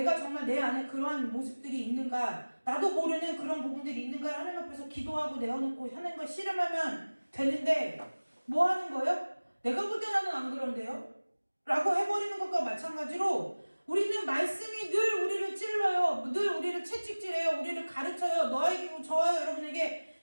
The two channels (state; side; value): inverted; both; correlation -1.00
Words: 정말 내 안에 그러한 모습들이 있는가, 나도 모르는 그런 부분들이 있는가 하나님 앞에서 기도하고 내어놓고 하나님과 씨름하면 되는데 뭐 하는 거예요? 내가 볼 때 나는 안 그런데요? 라고 해버리는 것과 마찬가지로 우리는 말씀이 늘 우리를 찔러요. 늘 우리를 채찍질해요. 우리를 가르쳐요. 저와 여러분에게